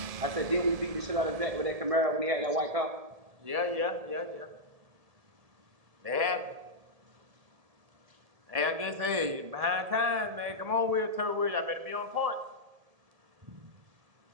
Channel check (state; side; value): late; left; 1.7 ms